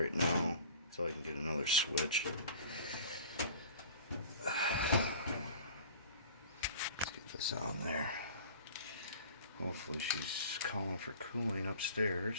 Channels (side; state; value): both; inverted; correlation -0.43